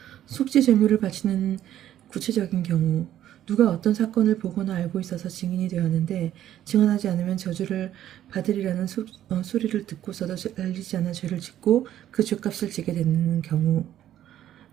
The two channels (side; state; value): left; quieter; 11.8 dB